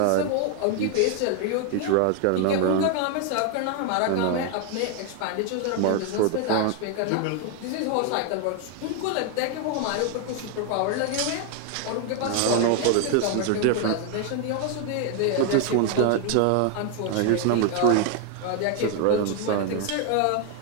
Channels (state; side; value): different; both; correlation 0.00